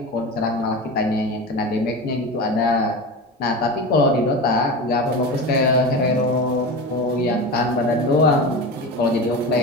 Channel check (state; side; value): normal; both; correlation 0.27